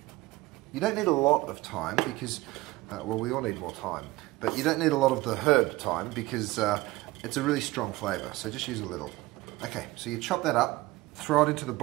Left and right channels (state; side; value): quieter; left; 19.4 dB